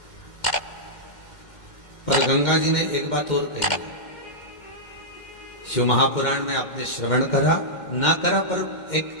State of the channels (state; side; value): late; right; 2.1 ms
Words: पर गंगा जी ने एक बात और कही है, शिव महापुराण में आपने श्रवण करा ना करा, पर